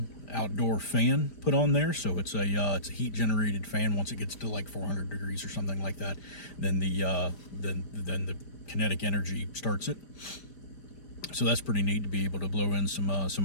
outdoor fan put on there. So it's a heat generated fan. Once it gets to like 400 degrees or something like that, then the kinetic energy starts it. So that's pretty neat to be able to blow in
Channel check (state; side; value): late; right; 5.0 ms